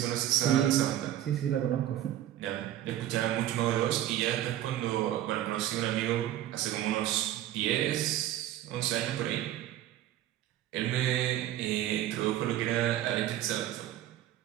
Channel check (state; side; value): quieter; left; 12.7 dB